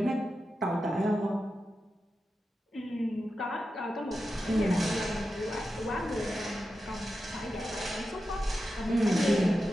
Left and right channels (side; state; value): both; normal; correlation 0.90